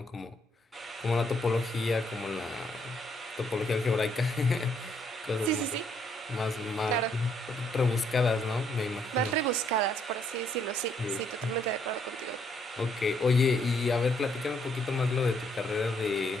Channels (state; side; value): normal; both; correlation 0.70